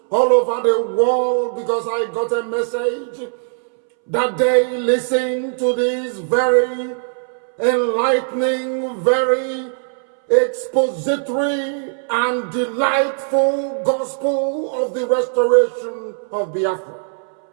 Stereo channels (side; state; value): left; silent; 64 dB below the other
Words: all over the world, because I got a message that they listen to this very enlightening, very expository and delightful gospel of the restoration of Biafra.